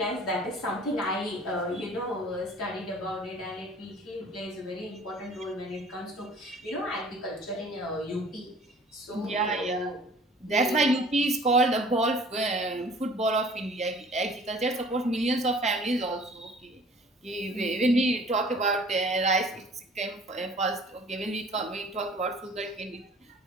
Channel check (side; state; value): both; normal; correlation 0.50